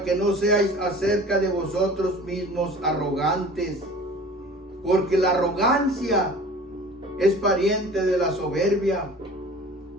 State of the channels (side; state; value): both; normal; correlation 0.43